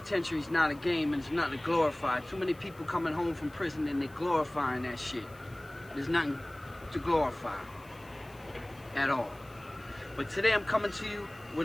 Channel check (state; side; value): noise; left; hiss, 26 dB below the sound